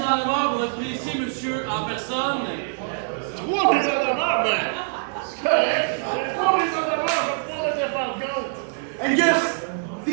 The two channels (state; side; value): silent; left; digital silence